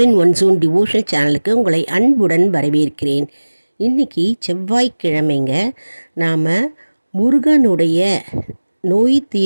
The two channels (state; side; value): inverted; both; correlation -1.00